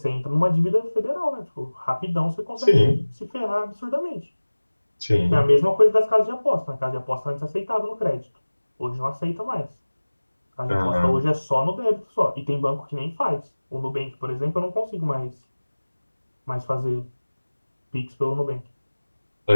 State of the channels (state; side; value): inverted; both; correlation -1.00